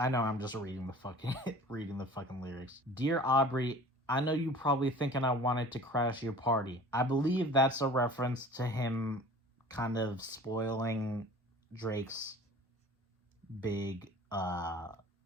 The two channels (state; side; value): normal; both; correlation 0.43